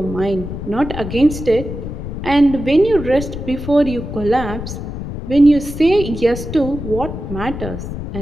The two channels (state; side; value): noise; left; rumble, 7 dB below the sound